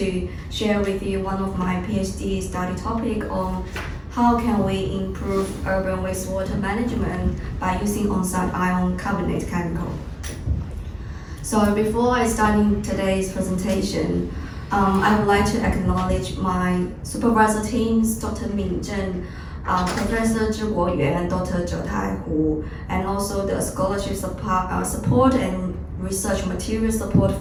share with you one of my PhD study topic on how can we improve urban wastewater management by using on-site ion carbonate chemical. So before I start today's presentation, I would like to acknowledge my supervisor teams, Dr. Min Zhen, Professor Zhi Guoyuan, Dr. Zhe Tai Hu, and also the scholarship support and research material support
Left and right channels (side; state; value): both; identical; correlation 1.00